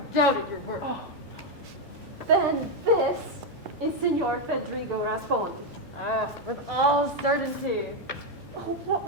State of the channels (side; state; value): both; normal; correlation 0.04